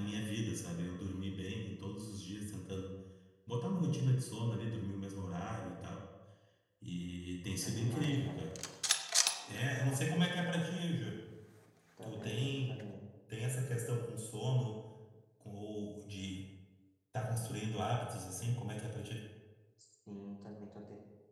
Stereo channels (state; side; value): identical; both; correlation 1.00